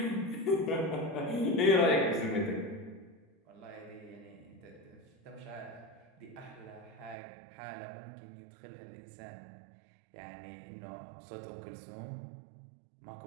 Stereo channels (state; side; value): drops out; left; at 7.2 s